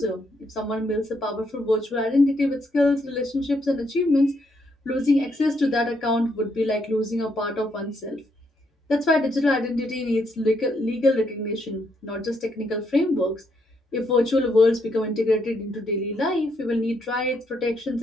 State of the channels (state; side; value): normal; both; correlation 0.75